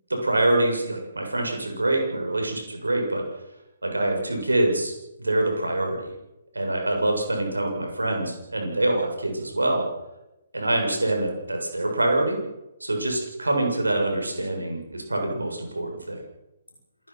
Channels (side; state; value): both; inverted; correlation -0.88